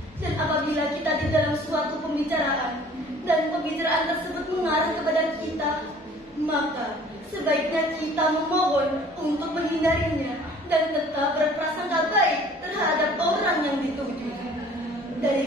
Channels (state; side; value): normal; both; correlation 0.51